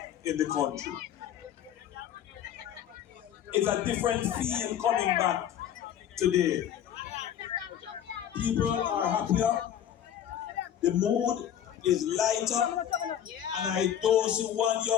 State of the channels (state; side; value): quieter; right; 10.1 dB